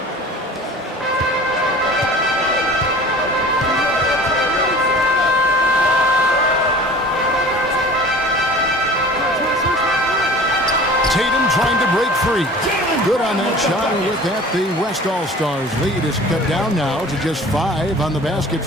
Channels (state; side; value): normal; both; correlation 0.43